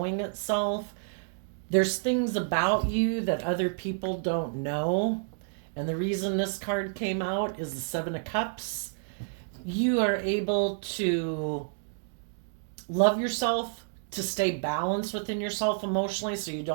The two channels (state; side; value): silent; left; digital silence